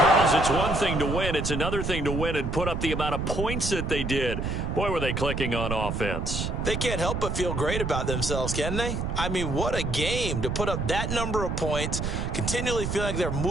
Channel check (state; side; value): noise; right; rumble, 2 dB below the sound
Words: It's one thing to win. It's another thing to win and put up the amount of points that they did. Boy, were they clicking on offense. They can't help but feel great about themselves, can they? I mean, what a game to put up that number of points, continually feeling like they're